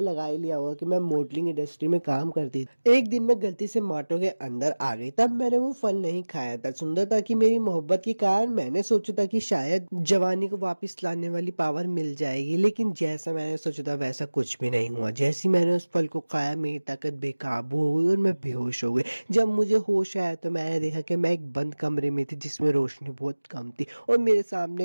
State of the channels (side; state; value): both; inverted; correlation -1.00